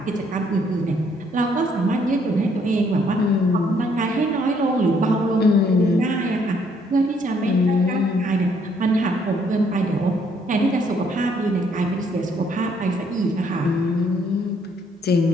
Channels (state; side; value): normal; both; correlation 0.67